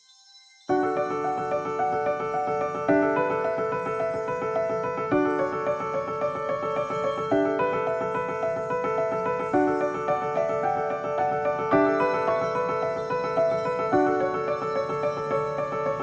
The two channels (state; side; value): identical; both; correlation 1.00